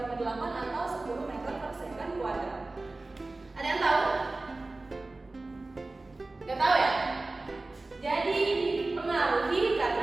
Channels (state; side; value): quieter; left; 3.1 dB